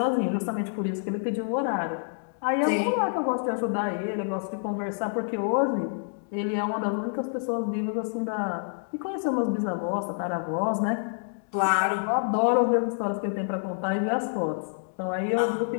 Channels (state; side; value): silent; right; digital silence